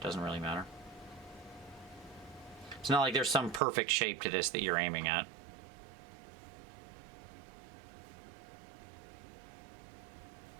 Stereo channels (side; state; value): left; drops out; at 3.6 s